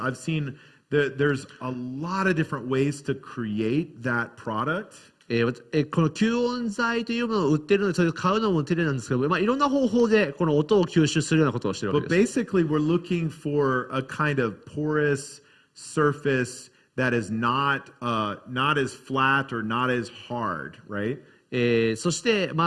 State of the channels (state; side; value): identical; both; correlation 1.00